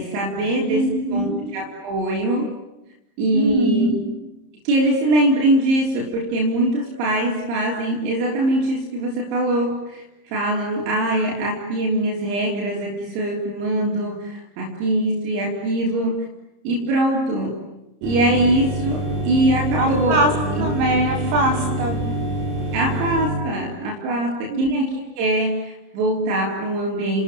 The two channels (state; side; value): late; left; 30 ms